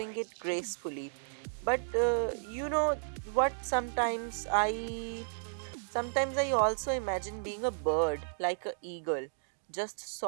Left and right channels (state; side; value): silent; left; digital silence